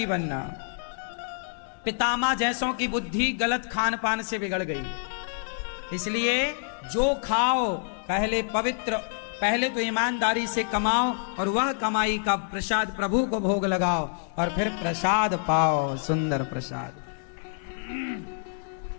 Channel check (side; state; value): right; silent; digital silence